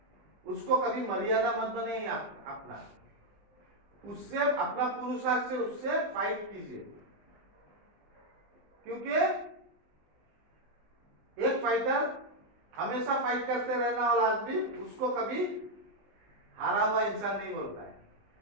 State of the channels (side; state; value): left; late; 19 ms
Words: उसको कभी मर्यादा मत बने अपना, उससे अपना पुरुषार्थ से उससे फाइट कीजिए। क्योंकि एक फाइटर हमेशा फाइट करते रहने वाला आदमी उसको कभी हारा हुआ इंसान नहीं बोलता है,